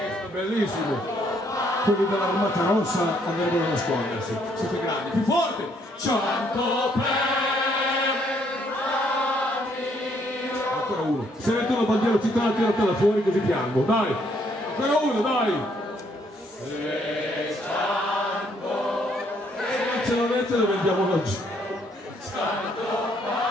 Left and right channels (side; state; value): both; normal; correlation 0.69